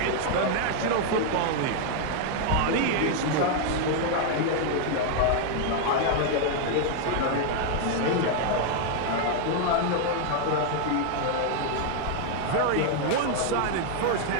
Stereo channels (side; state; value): both; different; correlation 0.00